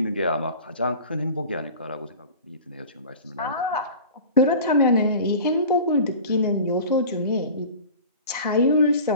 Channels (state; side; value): inverted; both; correlation -0.39